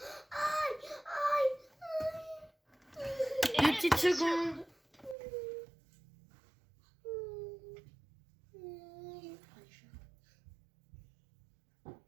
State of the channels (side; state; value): left; drops out; at 5.2 s